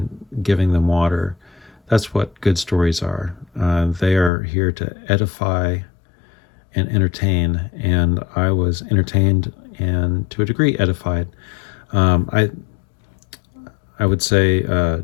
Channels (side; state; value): right; drops out; at 4.3 s